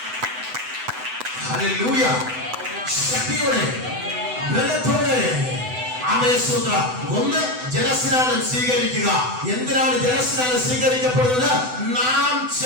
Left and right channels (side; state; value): left; late; 7.9 ms